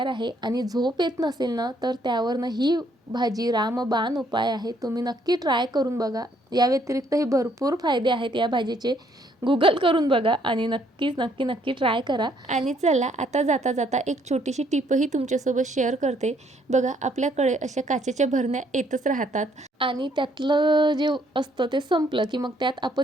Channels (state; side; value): normal; both; correlation 0.67